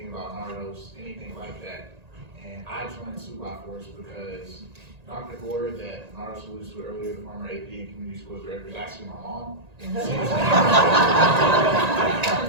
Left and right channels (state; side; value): late; left; 1.9 ms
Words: about Nardos, anything like that. And I joined 2x4s because Dr. Gore, that Nardos alluded to earlier, the former AP and Community Schools Director, is actually my mom.